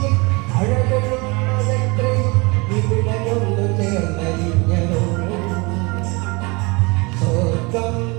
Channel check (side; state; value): left; quieter; 27.2 dB